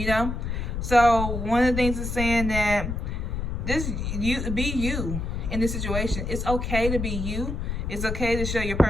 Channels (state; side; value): noise; left; rumble, 3 dB below the sound